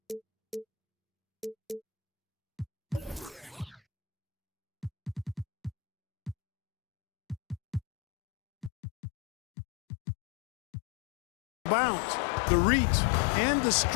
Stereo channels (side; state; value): right; drops out; at 8.7 s